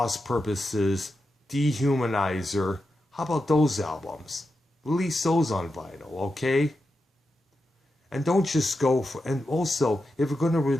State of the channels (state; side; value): normal; both; correlation 0.89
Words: Purposes, Dehumanizer? How about those albums? Release those on vinyl, okay? And don't just go for, and also, if you're going to